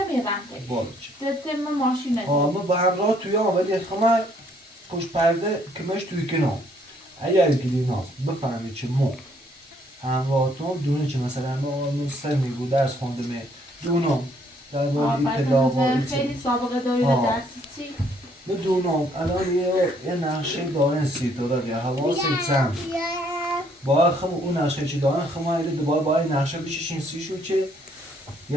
رن تی بالا تتم ماشین نداره اما با همراه توی ولی خمه پشت پرده کمش توی کنار اگر گلیناز بفهمه چه مو همراهتون دونه چه مثلا ما سر میگو درس خونده می دونم در باره اطلاع و خیلی سابقه داری آه. درس چی؟ بدونم الان یه نقشه دارن سیتورا یا حواست هم باید خم اون نقشه چی دارن خم ایده دوباره باید نقشه بششین سیشو چه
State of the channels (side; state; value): both; normal; correlation 0.66